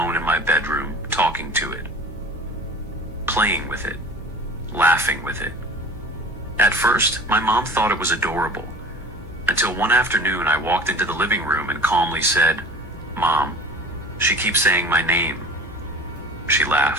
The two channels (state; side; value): normal; both; correlation 0.41